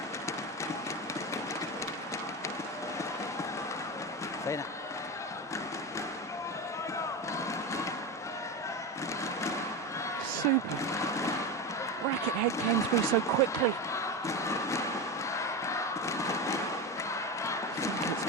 Super. Racket head came through so quickly.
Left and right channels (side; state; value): both; normal; correlation 0.20